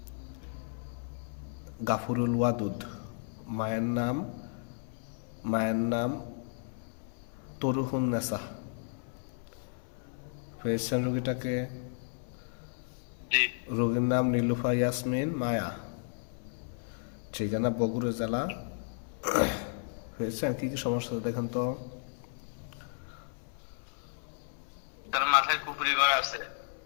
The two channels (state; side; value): silent; right; 55 dB below the other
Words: গাফুরুল ওয়াদুদ। মায়ের নাম তরুহুন নেসা। পেয়েছেন রোগীটাকে? জি। রোগীর নাম নীলুফা ইয়াসমিন মায়া। ঠিকানা বগুড়া জেলা। পেয়েছেন? কি কি সমস্যা দেখেন তো? তার মাথায় কুফরি করা আছে,